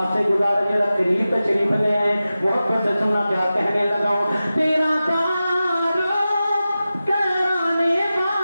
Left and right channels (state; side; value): inverted; both; correlation -0.94